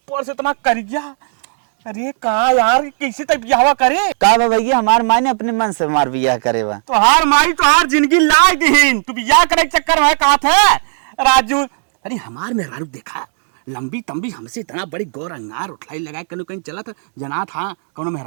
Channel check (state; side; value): silent; left; digital silence